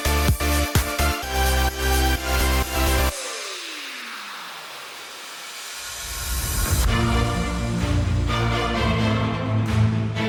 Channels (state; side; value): identical; both; correlation 1.00